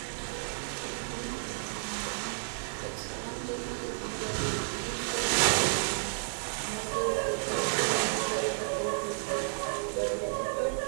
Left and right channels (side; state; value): left; silent; digital silence